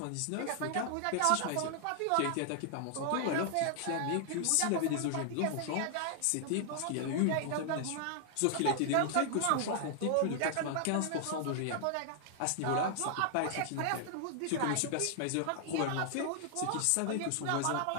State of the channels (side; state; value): both; different; correlation 0.00